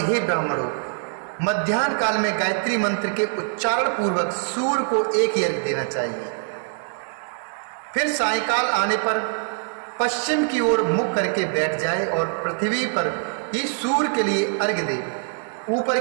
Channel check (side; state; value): left; silent; 63 dB below the other